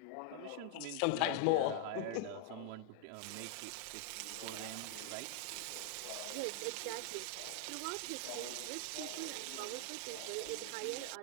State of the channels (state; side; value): different; both; correlation 0.00